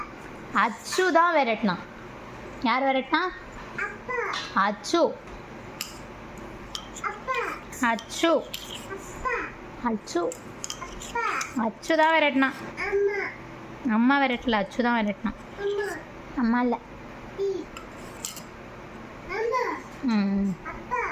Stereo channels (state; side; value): identical; both; correlation 1.00